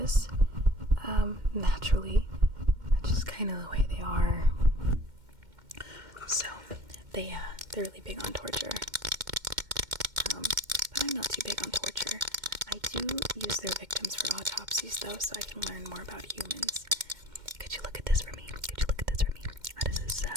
naturally. That's just kind of the way they are. So they're really big on torture. But I'm not too big on torture. I do use their victims for autopsies though, so I can learn more about humans. Could you look at this for me? How does this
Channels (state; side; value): late; left; 2.1 ms